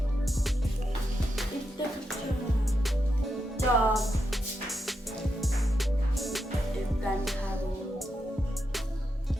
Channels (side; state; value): both; normal; correlation 0.85